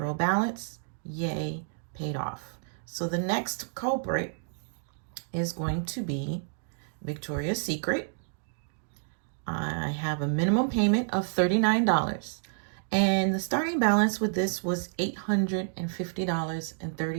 balance. Yay, paid off. So the next culprit is going to be Victoria's Secret. I have a minimum payment of $39. And the starting balance with this was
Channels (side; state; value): left; silent; digital silence